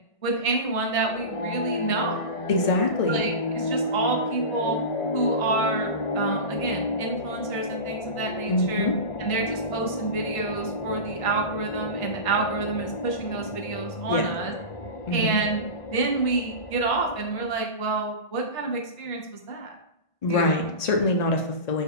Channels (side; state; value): right; late; 1.5 ms